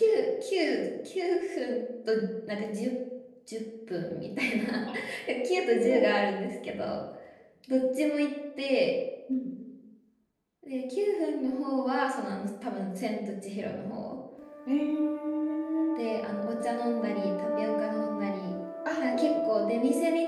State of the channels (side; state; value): both; identical; correlation 1.00